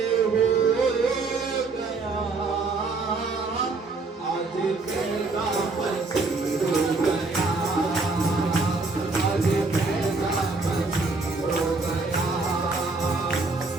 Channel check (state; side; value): quieter; left; 3.8 dB